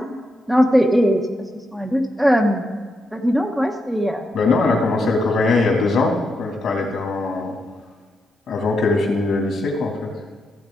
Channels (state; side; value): normal; both; correlation 0.84